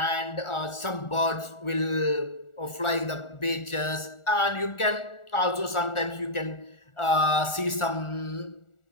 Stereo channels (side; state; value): right; late; 1.4 ms